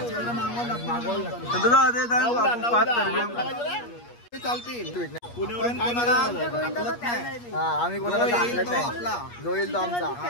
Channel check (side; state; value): right; late; 8.4 ms